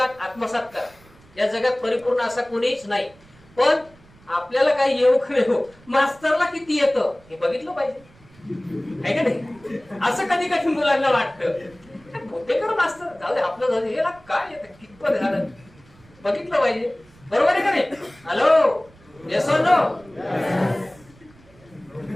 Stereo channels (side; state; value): right; noise; rumble, 27 dB below the sound